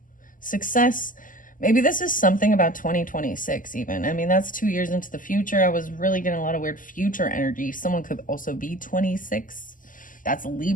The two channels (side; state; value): right; late; 0.39 ms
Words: Success. Maybe this is something about 2026 even. I mean, that's 2 years into the future. I was really getting a lot of weird future energy. Someone could also be 26. That's